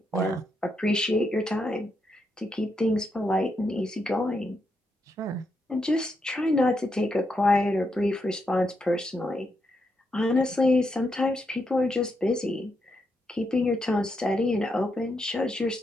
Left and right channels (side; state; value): both; normal; correlation 0.82